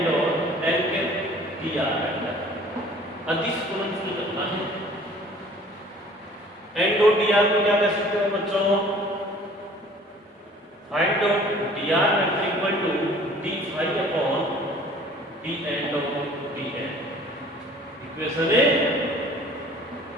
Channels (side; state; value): both; normal; correlation 0.51